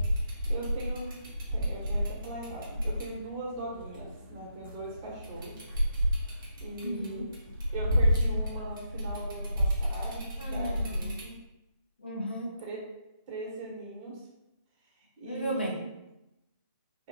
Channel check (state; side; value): inverted; both; correlation -0.80